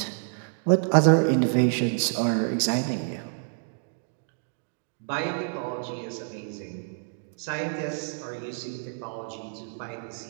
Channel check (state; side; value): silent; left; digital silence